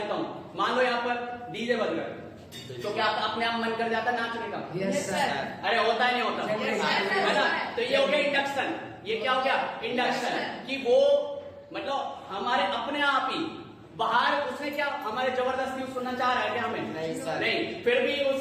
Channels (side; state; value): both; identical; correlation 1.00